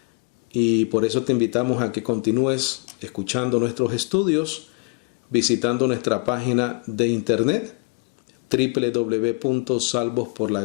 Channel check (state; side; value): quieter; right; 33.5 dB